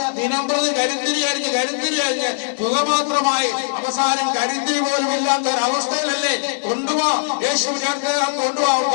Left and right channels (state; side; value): silent; right; 66 dB below the other